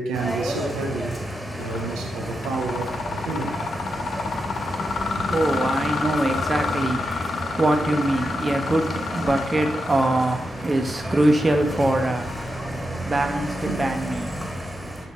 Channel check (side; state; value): both; normal; correlation 0.86